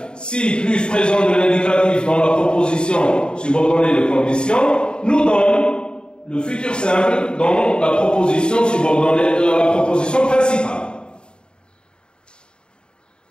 Si plus présent de l'indicatif dans la proposition subordonnée de condition nous donne le futur simple dans la proposition subordonnée de la proposition principale.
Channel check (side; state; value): right; late; 0.050 ms